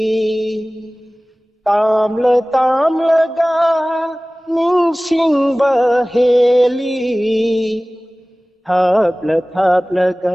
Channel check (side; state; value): both; normal; correlation 0.98